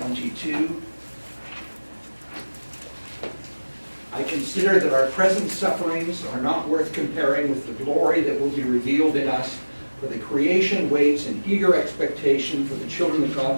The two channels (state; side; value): inverted; both; correlation -1.00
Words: 22. I consider that our present sufferings are not worth comparing with the glory that will be revealed in us, for the creation waits in eager expectation for the children of God